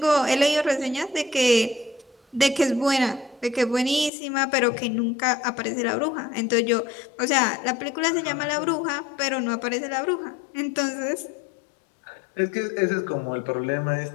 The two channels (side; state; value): right; drops out; at 4.1 s